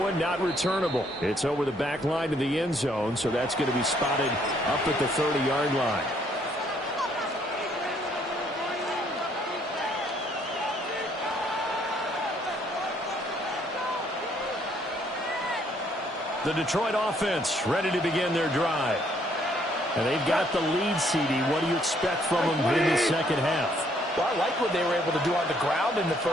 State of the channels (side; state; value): both; normal; correlation 0.67